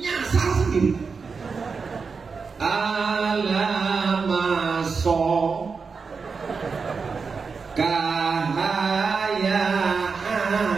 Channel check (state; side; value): quieter; left; 5.1 dB